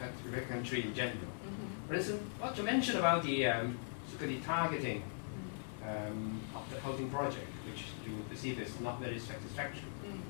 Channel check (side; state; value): right; silent; digital silence